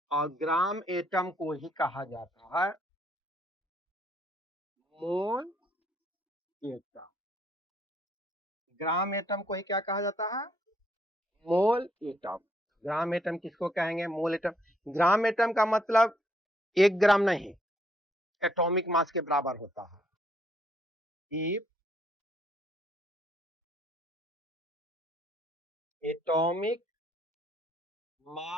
और ग्राम एटम को ही कहा जाता है मोल एटम। ग्राम एटम को ही क्या कहा जाता है? मोल एटम। ग्राम एटम किसको कहेंगे? मोल एटम। ग्राम एटम का मतलब 1 ग्राम नहीं, एटॉमिक मास के बराबर होता है। If atomic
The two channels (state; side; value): normal; both; correlation 0.69